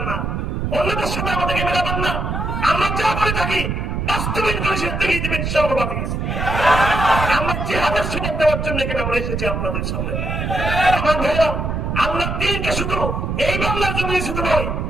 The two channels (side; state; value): right; noise; rumble, 2 dB below the sound